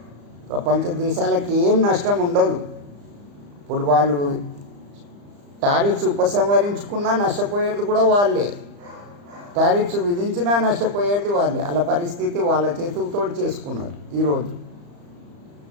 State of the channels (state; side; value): late; left; 35 ms